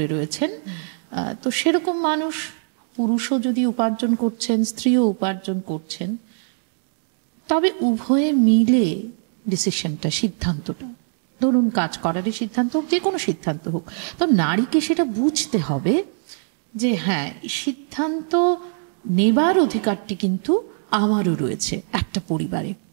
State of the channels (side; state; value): left; silent; digital silence